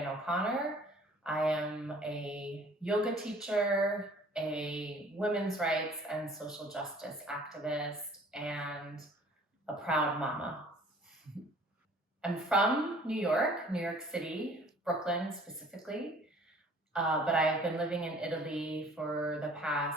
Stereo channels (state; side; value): normal; both; correlation 0.53